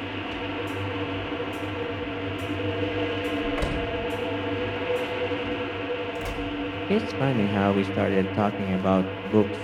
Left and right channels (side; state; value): both; identical; correlation 1.00